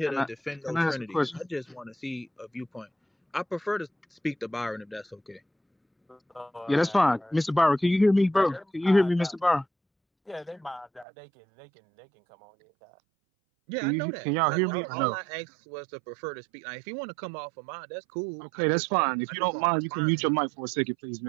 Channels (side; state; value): left; drops out; at 11.1 s